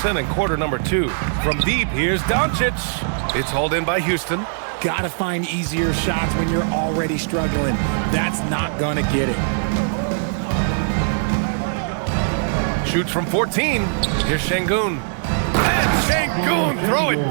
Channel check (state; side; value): silent; left; digital silence